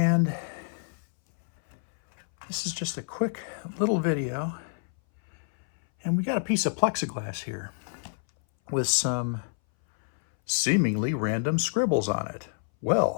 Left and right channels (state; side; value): silent; right; 59 dB below the other